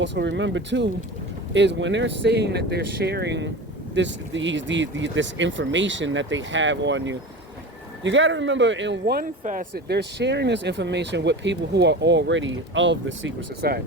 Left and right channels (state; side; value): normal; both; correlation 0.31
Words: remember too, is when they're saying that they're sharing this information that they have on you, you got to remember, in one facet, they're sharing this information with people who are already of the secret